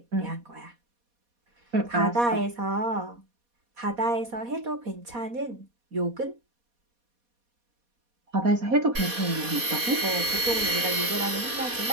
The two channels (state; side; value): late; left; 4.2 ms